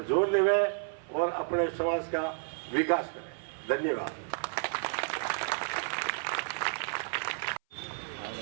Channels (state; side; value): silent; left; 57 dB below the other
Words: जोर देवें और अपने समाज का विकास करें। धन्यवाद।